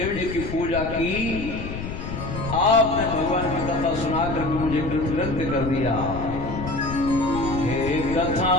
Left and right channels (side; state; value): left; noise; rumble, 7 dB below the sound